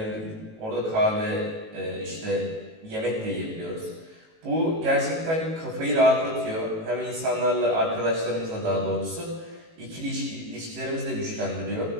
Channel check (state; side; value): late; left; 18 ms